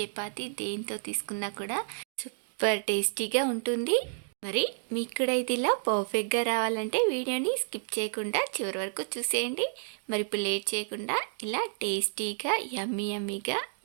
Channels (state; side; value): silent; left; digital silence